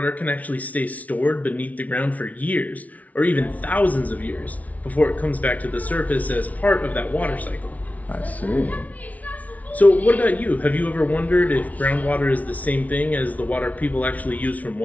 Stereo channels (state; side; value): late; right; 0.071 ms